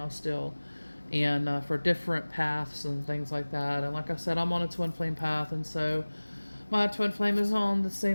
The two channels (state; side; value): inverted; both; correlation -1.00